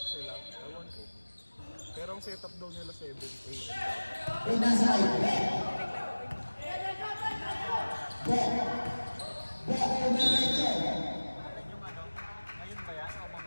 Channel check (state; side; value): inverted; both; correlation -1.00